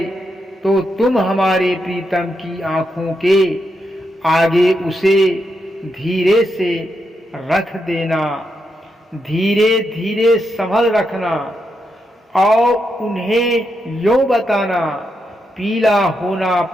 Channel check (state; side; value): normal; both; correlation 0.83